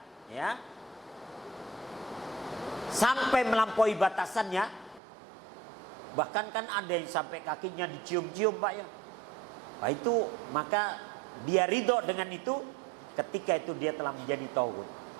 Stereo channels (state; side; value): drops out; left; at 5.0 s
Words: ya, sampai melampaui batasannya. Bahkan kan ada yang sampai kakinya dicium-cium, Pak, ya. Nah, itu maka dia ridho dengan itu, ketika itu dia telah menjadi tauhid,